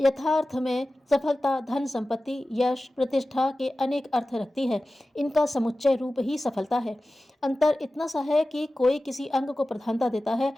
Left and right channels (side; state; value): both; normal; correlation 0.96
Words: में सफलता धन संपत्ति यश प्रतिष्ठा के अनेक अर्थ रखती है। इनका समुच्चय रूप ही सफलता है। अंतर इतना सा है कि कोई किसी अंग को प्रधानता देता है